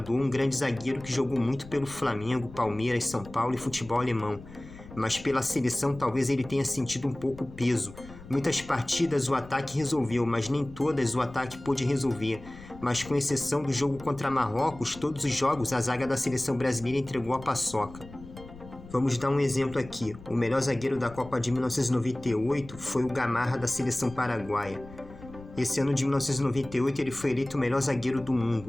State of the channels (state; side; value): noise; left; rumble, 17 dB below the sound